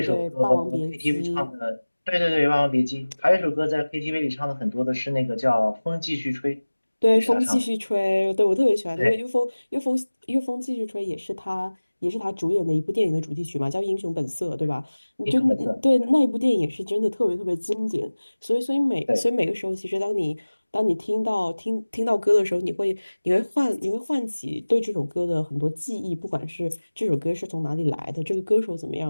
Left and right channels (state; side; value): inverted; both; correlation -1.00